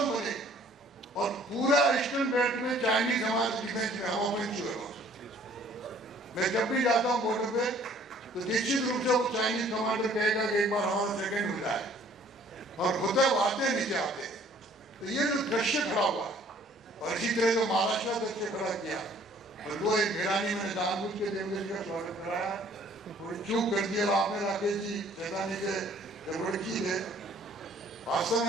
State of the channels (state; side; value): normal; both; correlation 0.57